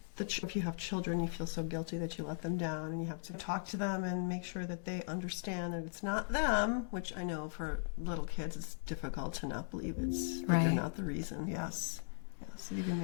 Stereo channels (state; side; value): silent; right; digital silence